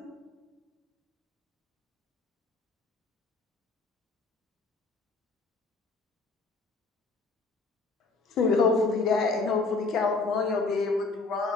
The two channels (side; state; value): right; quieter; 3.8 dB